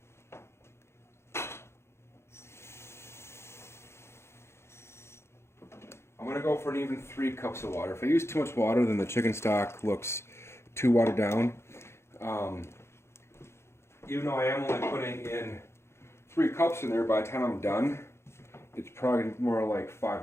I'm going to go for an even 3 cups of water. If I use too much water, then the chicken stock looks too watered down. Even though I am only putting in 3 cups in there, by the time I'm done, it's probably more like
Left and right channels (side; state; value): right; late; 0.13 ms